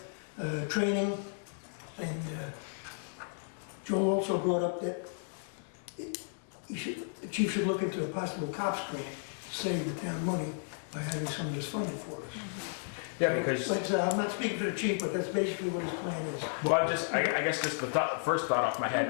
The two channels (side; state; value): right; silent; digital silence